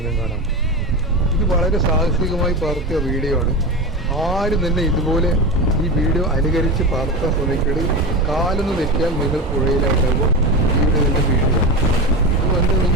കാണാം. ഇത് വളരെ സാഹസികമായി പകർത്തിയ വീഡിയോ ആണ്. ആരും തന്നെ ഇതുപോലെ ഈ വീഡിയോ അനുകരിച്ച് പകർത്താൻ ശ്രമിക്കരുത്. കാലൊന്ന് തെറ്റിയാൽ നിങ്ങൾ പുഴയിലായിട്ടാകുമ്പോൾ വീഡിയോ തന്നെ വീഡിയോ. അതുകൊണ്ട് ഈ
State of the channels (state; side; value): normal; both; correlation 0.23